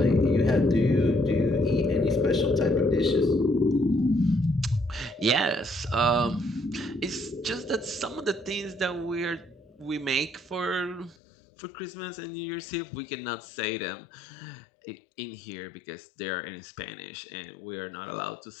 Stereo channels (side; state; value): right; drops out; at 11.2 s